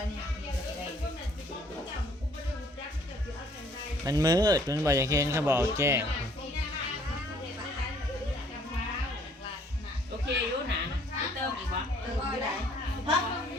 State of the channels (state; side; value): normal; both; correlation 0.60